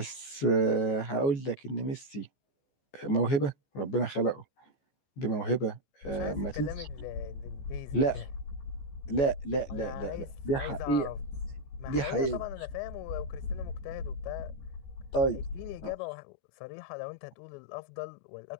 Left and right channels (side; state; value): right; late; 14 ms